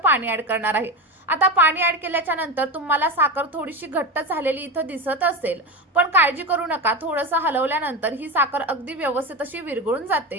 ॲड करणार आहे. आता पाणी ॲड केल्याच्या नंतर तुम्हाला साखर थोडीशी घट्ट झालेली इथं दिसत असेल, पण काळजी करू नका, थोडंसं हलवल्यानंतर ही साखर अगदी व्यवस्थित अशी विरघळून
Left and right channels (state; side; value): normal; both; correlation 0.21